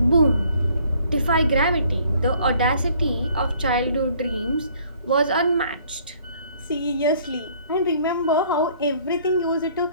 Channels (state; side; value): inverted; both; correlation -0.60